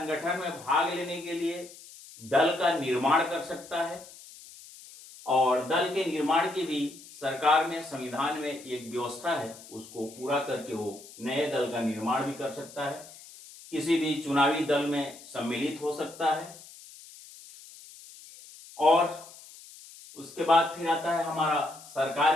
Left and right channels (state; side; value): noise; left; hiss, 19 dB below the sound